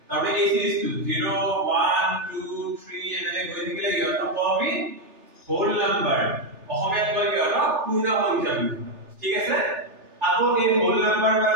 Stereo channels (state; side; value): late; left; 3.4 ms